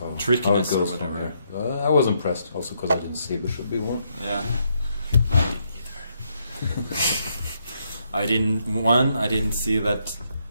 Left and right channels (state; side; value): inverted; both; correlation -0.76